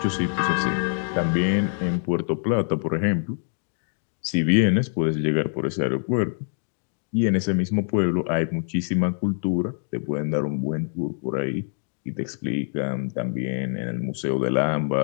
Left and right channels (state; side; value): silent; right; digital silence